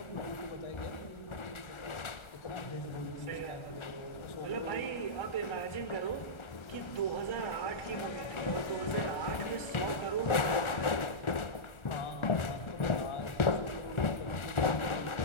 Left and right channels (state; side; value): late; right; 1.4 ms